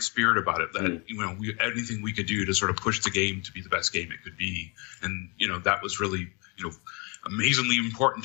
about it, that, anything we could do to sort of push the game to be the best game it could be. And, that was really, amazingly important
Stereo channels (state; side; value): quieter; right; 30.8 dB